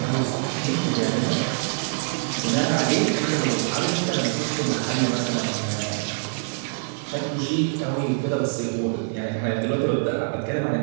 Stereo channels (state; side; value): silent; left; 57 dB below the other